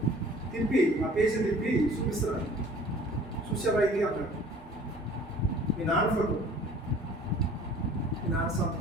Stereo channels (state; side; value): normal; both; correlation 0.50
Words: తిప్పి ఆ పేజీ తిప్పి చూపిస్తున్నాడు. చూసావా ఇది అన్నాడు. మీ నాన్న ఫోటో, మీ నాన్న